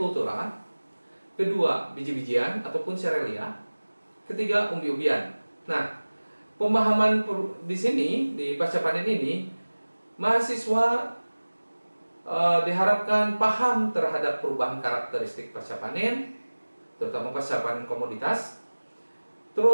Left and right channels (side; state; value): both; inverted; correlation -1.00